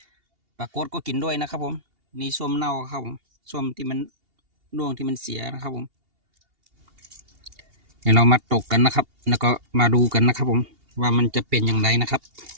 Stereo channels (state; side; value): late; left; 2.8 ms